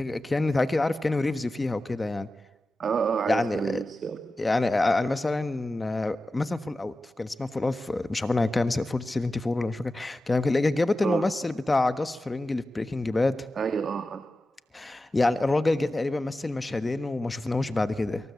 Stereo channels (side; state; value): both; normal; correlation 0.93